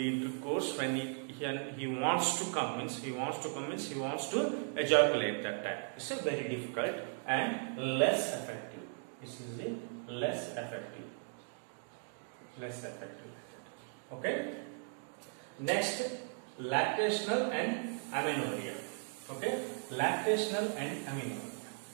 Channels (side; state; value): left; silent; 53 dB below the other